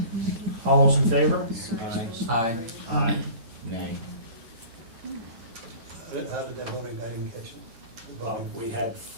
All those in favor? Aye. Aye. Aye. Nay. How did that voting, I didn't catch it. The voting. We had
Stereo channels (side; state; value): left; late; 9.0 ms